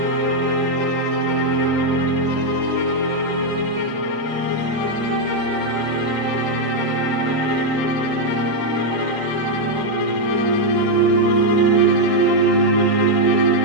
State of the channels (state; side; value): late; left; 3.8 ms